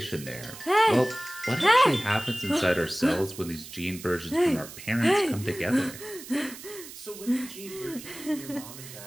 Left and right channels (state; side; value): noise; right; hiss, 14 dB below the sound